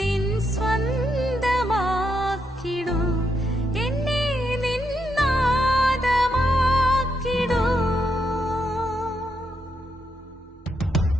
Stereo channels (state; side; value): normal; both; correlation 0.80